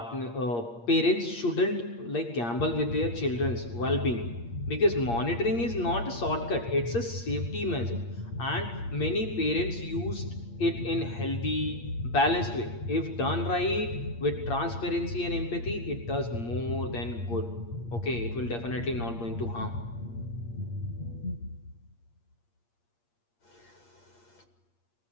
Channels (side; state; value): right; late; 8.6 ms